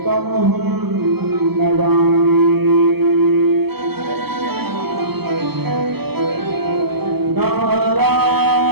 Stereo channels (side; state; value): left; late; 0.96 ms